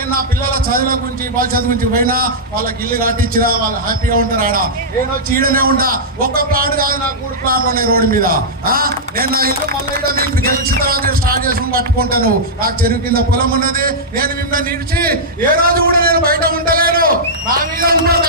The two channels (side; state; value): both; normal; correlation -0.10